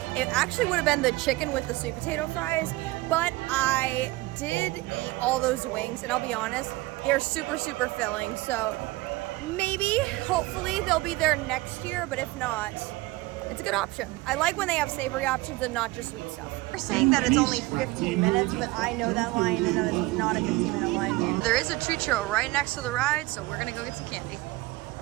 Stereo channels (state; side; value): quieter; left; 20.5 dB